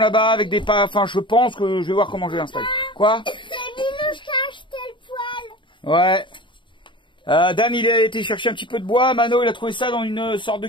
là-bas, avec des pas... Enfin, je pense que je vais voir comment je vais l'installer. Quoi? C'est Minouche qui a acheté le poêle. Ouais. Dan, il a été chercher un petit peu de bois. Mano, il a trouvé ça dans une sorte de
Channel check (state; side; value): late; right; 0.23 ms